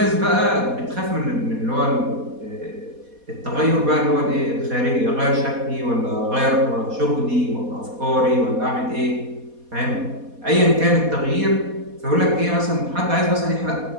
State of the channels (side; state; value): left; late; 4.2 ms